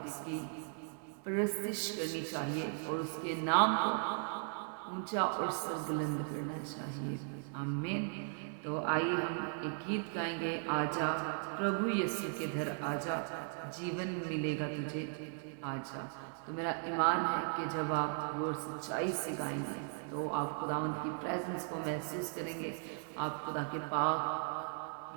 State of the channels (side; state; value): left; silent; 53 dB below the other